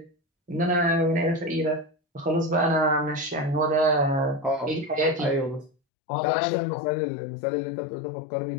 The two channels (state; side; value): drops out; right; at 5.7 s